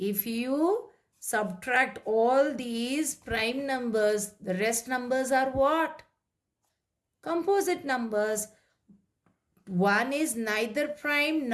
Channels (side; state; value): both; identical; correlation 1.00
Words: you subtract all these prime numbers, the rest numbers are what? Composite numbers. 1 is neither prime